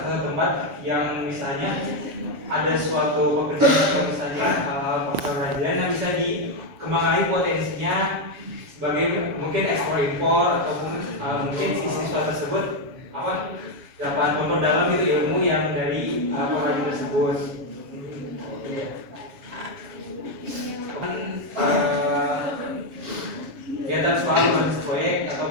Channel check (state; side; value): late; left; 7.2 ms